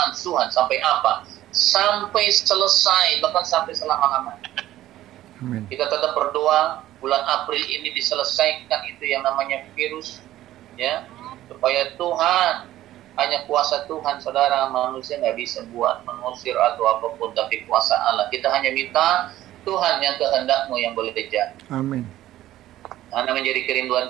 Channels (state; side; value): quieter; left; 14.2 dB